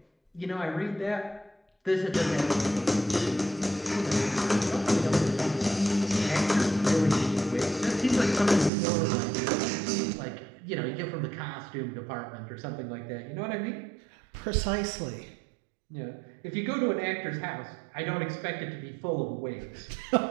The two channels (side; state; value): left; drops out; at 8.7 s